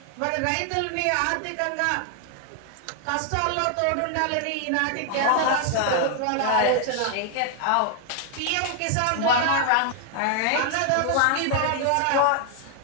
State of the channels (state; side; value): different; both; correlation 0.00